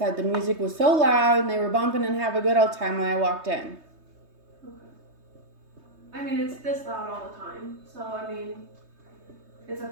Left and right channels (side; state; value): left; late; 3.2 ms